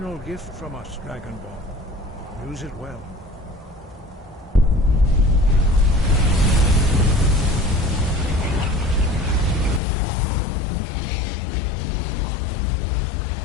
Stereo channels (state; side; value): drops out; right; at 9.8 s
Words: gift from us, Dragonborn. Use it well.